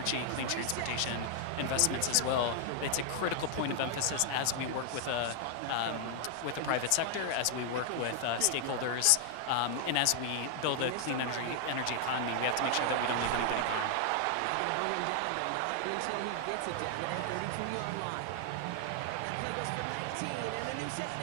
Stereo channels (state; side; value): different; both; correlation 0.00